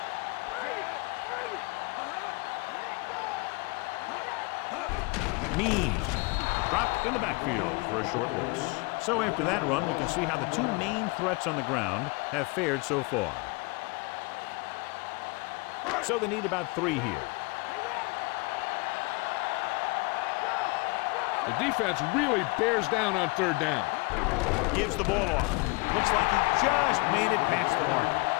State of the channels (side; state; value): right; quieter; 28.1 dB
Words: Means dropped in the backfield for a short loss. So after that run, we can see how the 2 main threats on the ground have fared so far. So they need about 3 here. The defense really bears down on 3rd down. Gives the ball off. Looks like he just made it past the mark.